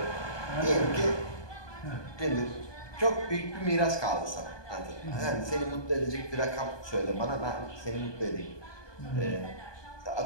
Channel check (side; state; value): right; late; 1.2 ms